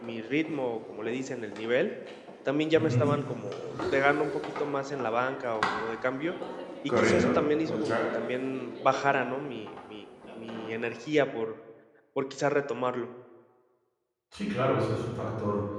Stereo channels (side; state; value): both; identical; correlation 1.00